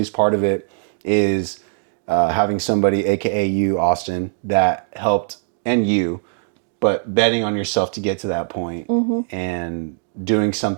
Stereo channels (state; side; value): silent; left; digital silence